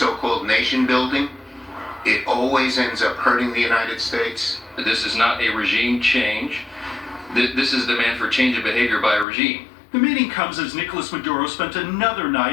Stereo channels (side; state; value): right; drops out; at 9.2 s